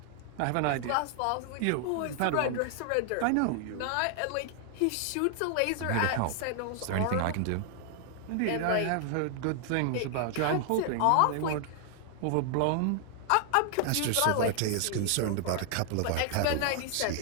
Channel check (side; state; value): both; different; correlation 0.00